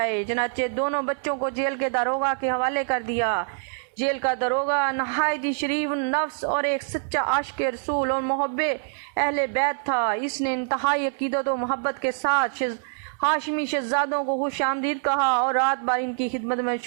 چنانچہ دونوں بچوں کو جیل کے داروغہ کے حوالے کر دیا۔ جیل کا داروغہ نہایت ہی شریف النفس اور ایک سچا عاشق رسول اور محب اہل بیت تھا۔ اس نے انتہائی عقیدت و محبت کے ساتھ ہاشمی شہزادوں کو خوش آمدید کہا اور رات بھر ان کی خدمت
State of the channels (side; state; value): left; silent; 60 dB below the other